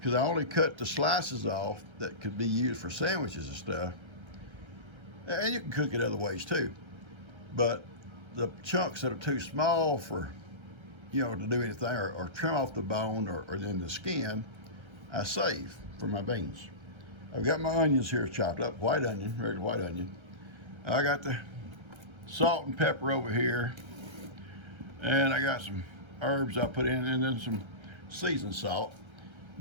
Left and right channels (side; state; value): left; late; 1.3 ms